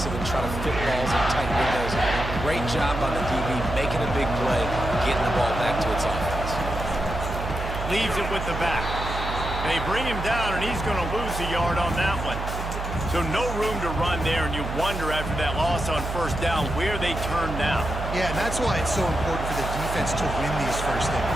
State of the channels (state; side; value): noise; right; hum, 5 dB below the sound